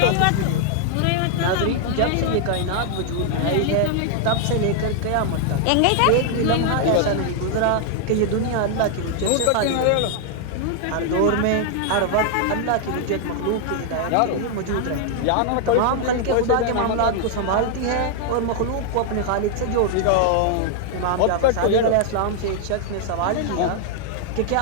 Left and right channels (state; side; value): different; both; correlation 0.00